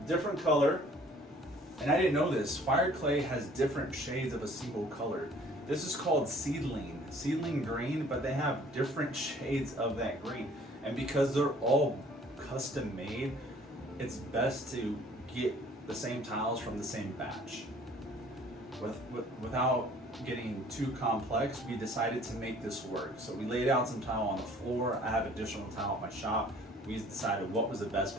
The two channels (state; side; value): normal; both; correlation 0.54